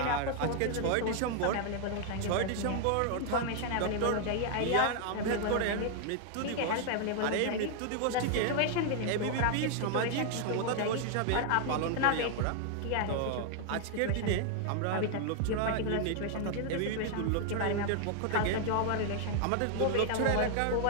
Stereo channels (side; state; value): both; different; correlation 0.00